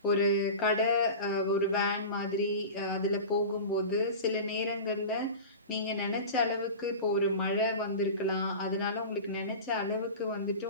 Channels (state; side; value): inverted; both; correlation -0.31